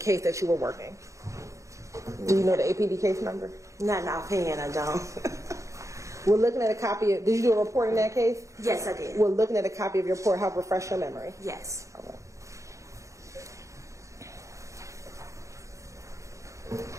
that you were working? Do you know the APD case number? Not in offhand, I don't. We're looking at a copy of, did you do a report in that case? Yes, I did. We're looking at a copy of your report, help refresh your memory. Yes. All right.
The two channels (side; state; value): left; late; 0.15 ms